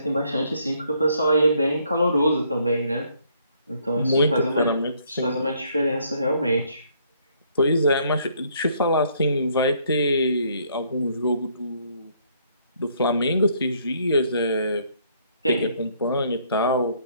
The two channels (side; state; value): both; inverted; correlation -0.67